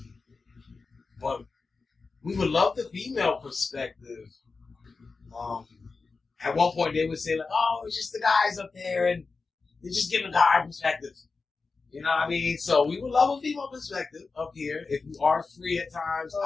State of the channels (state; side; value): quieter; right; 4.3 dB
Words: But we would love the female perspective. At one point they would say "Oh, it's just the guys up there, and they're just giving a guy perspective." You know what I mean? So we would love a female perspective up here. If you are free at times,